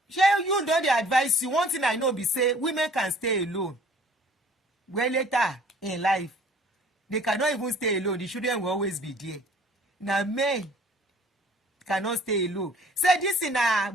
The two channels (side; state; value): both; normal; correlation 0.53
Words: you don't advise you. One thing I know be say women can stay alone. Well, later in life, they cannot even stay alone. The children will always be there. Now, men cannot stay alone. Say this in a